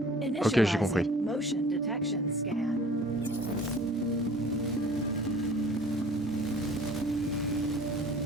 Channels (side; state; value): both; normal; correlation 0.48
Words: Ok, j'ai compris. Initializing motion detection scan.